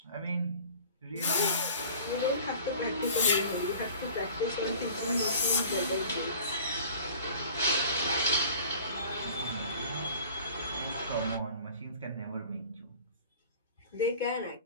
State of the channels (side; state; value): both; inverted; correlation -0.44